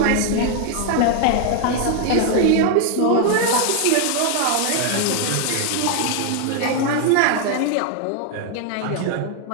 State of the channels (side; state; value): both; different; correlation 0.00